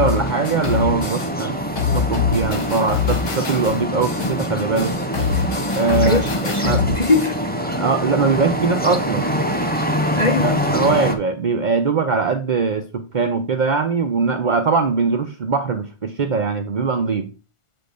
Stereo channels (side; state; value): right; late; 1.4 ms